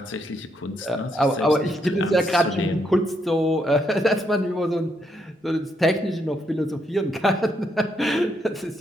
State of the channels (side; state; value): both; normal; correlation 0.77